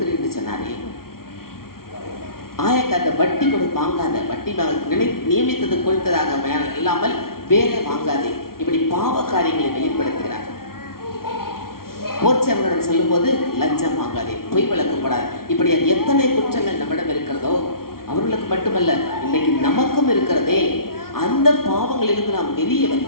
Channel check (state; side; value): late; right; 0.93 ms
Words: என்று சொன்னாரே. ஆயக்காத வட்டி வாங்காத, வட்டி நியமித்தது கொடுத்ததாக இல்லாமல் வேற வாங்காதே. இப்படி பாவ காரியங்களை வெளிப்படுத்துகிறார். போர்ச்சவர்களிடம் சொல்லும் போது லஞ்சம் வாங்காதே, பொய் வழக்கப்படாது. இப்படி எத்தனை குற்றங்கள் நம்மிடம் இருக்கிறதோ அவர்களுக்கு மட்டுமல்ல, இன்னைக்கு நமக்கும் இருக்கிறதே. அந்த பாவங்களிலிருந்து நாம் வெளியே